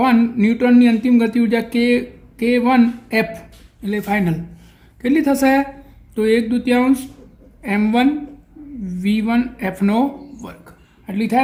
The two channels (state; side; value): identical; both; correlation 1.00